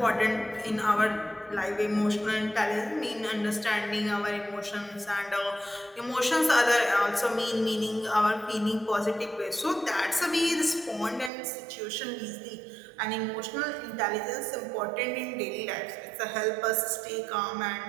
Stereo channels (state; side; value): drops out; left; at 11.3 s